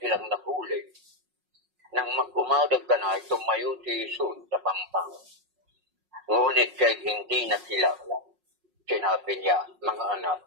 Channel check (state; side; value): late; left; 5.5 ms